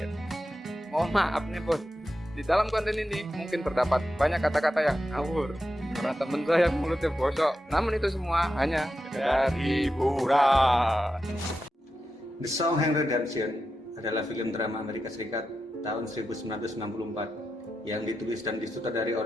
Mohon maaf nih bos, di dalam konten ini mungkin terdapat banyak kata-kata yang ngawur karena temen saya mulutnya bosok. Namun itu semua hanya sekedar hiburan. The Sound Redemption adalah film drama Amerika Serikat tahun 1964 yang ditulis dan disutradari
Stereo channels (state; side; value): normal; both; correlation 0.89